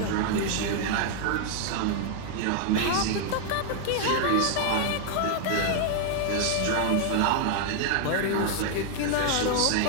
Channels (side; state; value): both; different; correlation 0.00